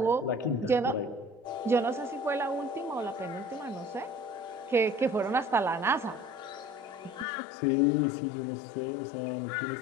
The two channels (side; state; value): right; drops out; at 7.2 s